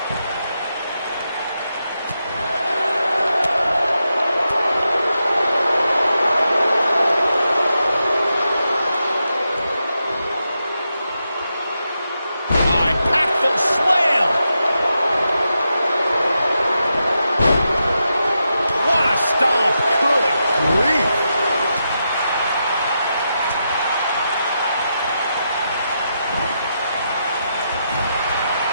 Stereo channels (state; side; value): inverted; both; correlation -0.86